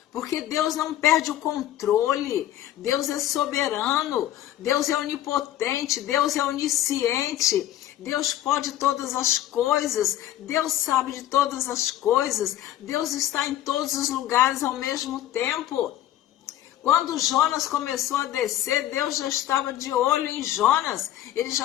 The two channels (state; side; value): quieter; right; 12.9 dB